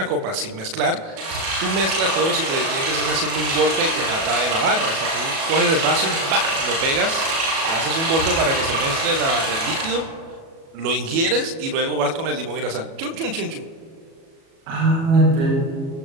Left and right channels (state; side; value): late; left; 37 ms